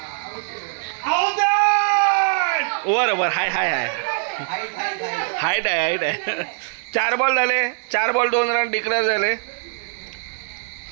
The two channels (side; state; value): left; silent; digital silence